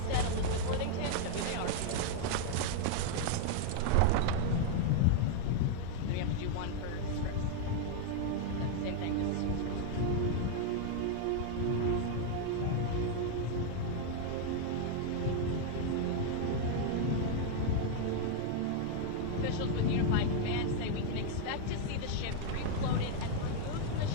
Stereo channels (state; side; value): different; both; correlation 0.00